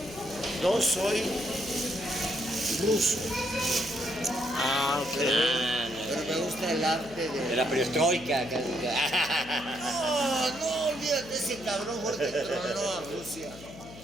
Yo soy ruso, Ok. pero me gusta el arte De de... la perestroika. No, olvídate, ese cabrón fue el que tronó a Rusia.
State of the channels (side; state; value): left; noise; hum, 17 dB below the sound